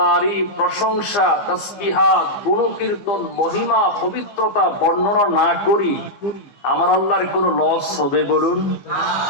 প্রশংসা, তাসবিহাত, গুণকীর্তন, মহিমা, পবিত্রতা বর্ণনা না করি, আমার আল্লাহর কোন লস হবে বলুন?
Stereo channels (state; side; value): late; right; 15 ms